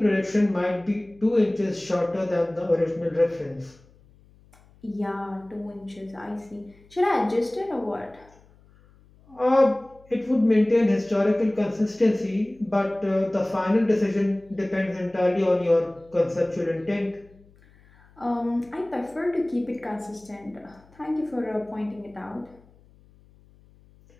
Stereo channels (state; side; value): noise; left; hum, 28 dB below the sound